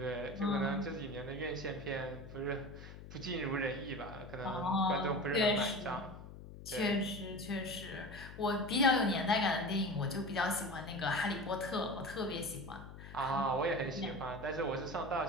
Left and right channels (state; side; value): noise; left; hum, 14 dB below the sound